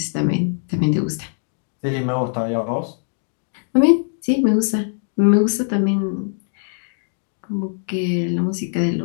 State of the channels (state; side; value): silent; right; digital silence